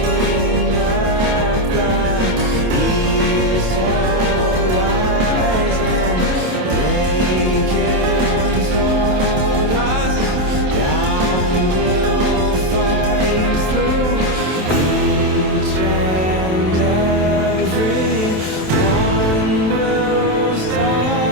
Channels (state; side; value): late; left; 27 ms